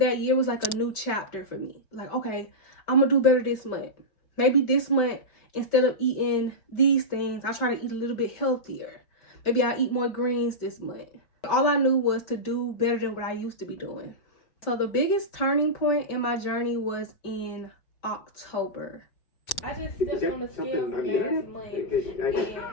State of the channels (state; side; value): late; right; 5.4 ms